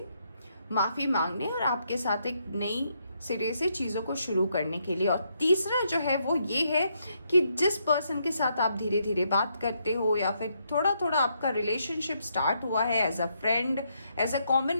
माफ़ी मांगने और आपके साथ एक नई सिरे से चीज़ों को शुरू करने के लिए। और तीसरा जो है वो ये है कि जिस पर्सन के साथ आप धीरे धीरे बात करते हो या फिर थोड़ा थोड़ा आपका रिलेशनशिप स्टार्ट हुआ है as a friend, as a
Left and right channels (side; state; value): both; inverted; correlation -0.76